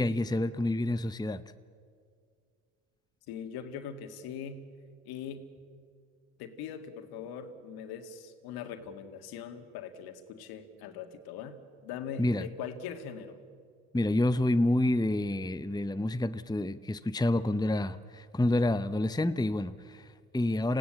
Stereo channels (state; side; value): normal; both; correlation 0.87